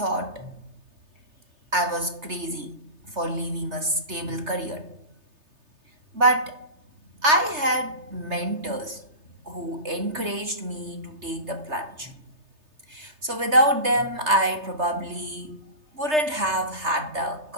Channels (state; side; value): late; left; 3.3 ms